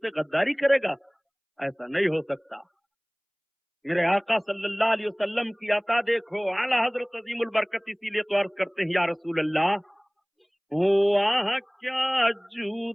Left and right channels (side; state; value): both; identical; correlation 1.00